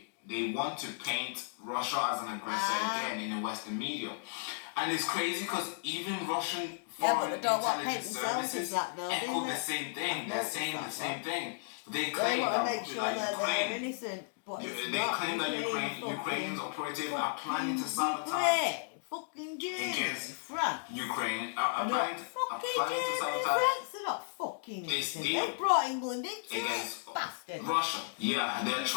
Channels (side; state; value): right; silent; digital silence